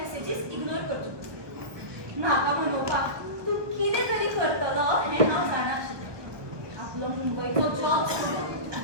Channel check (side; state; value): left; late; 1.2 ms